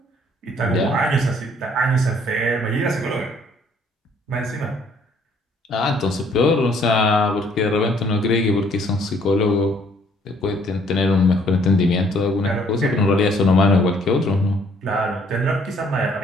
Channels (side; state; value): both; normal; correlation 0.63